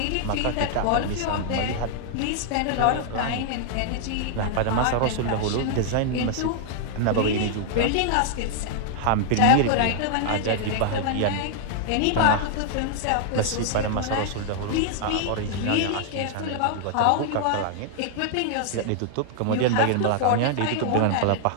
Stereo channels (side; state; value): both; different; correlation -0.01